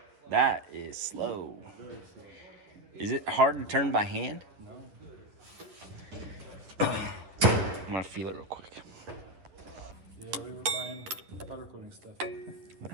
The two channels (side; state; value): left; late; 10 ms